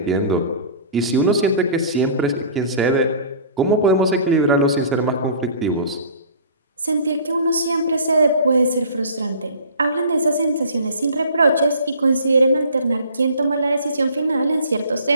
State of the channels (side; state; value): both; inverted; correlation -0.45